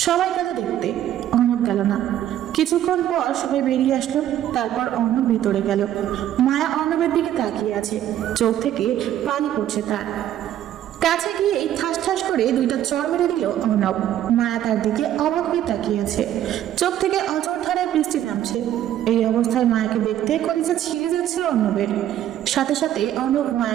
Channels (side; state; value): left; quieter; 11.7 dB